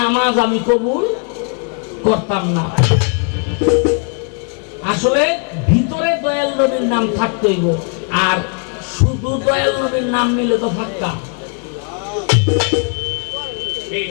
আমি কবুল করতাম না। আসলে ভিতরে দয়াল নবীর নাম থাকতে হইব, আর শুধু দয়াল নবীর নাম নিলে তো ফাক্কা।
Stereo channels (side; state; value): right; quieter; 39.5 dB